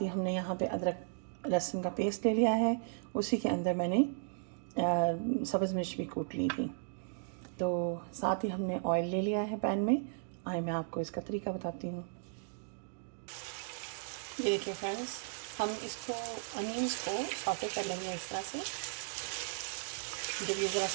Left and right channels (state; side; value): silent; left; digital silence